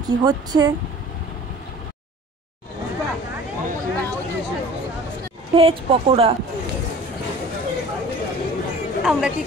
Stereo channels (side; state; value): both; normal; correlation 0.45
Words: কি হচ্ছে। ভেজ পকোড়া আমরা কি